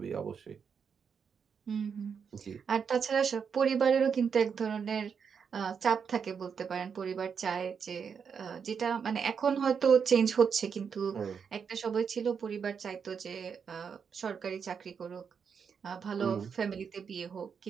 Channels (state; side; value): quieter; left; 6.6 dB